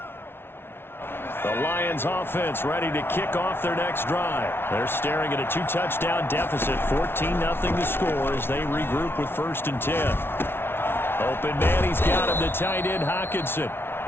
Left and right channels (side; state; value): right; late; 0.11 ms